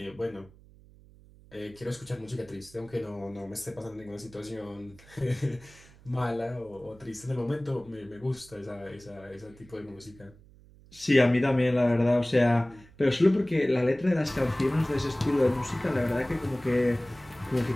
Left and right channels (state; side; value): noise; right; hum, 24 dB below the sound